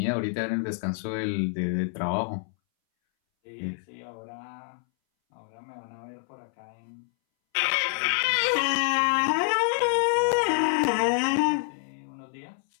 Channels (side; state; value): right; silent; 60 dB below the other